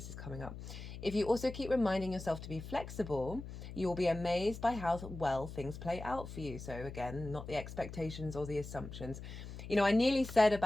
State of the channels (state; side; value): noise; left; hum, 11 dB below the sound